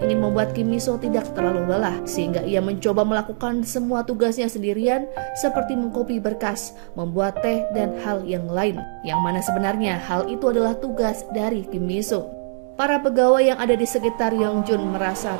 ingin membuat Kim Miso tidak terlalu lelah sehingga ia mencoba melakukan semua tugasnya sendirian seperti mengkopi berkas, membuat teh, dan hal yang lain. Yang mana sebenarnya hal itu adalah tugas dari Kim Miso. Para pegawai yang ada di sekitar Yongjun merasa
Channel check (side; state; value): left; silent; 64 dB below the other